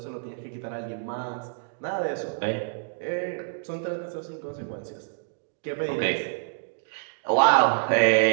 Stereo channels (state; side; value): silent; left; digital silence